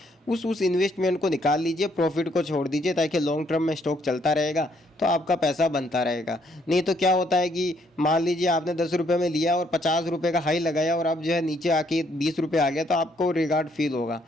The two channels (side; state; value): both; normal; correlation 0.69